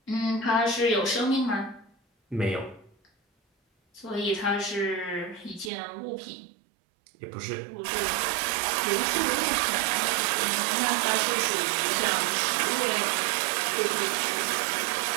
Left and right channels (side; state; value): left; drops out; at 5.7 s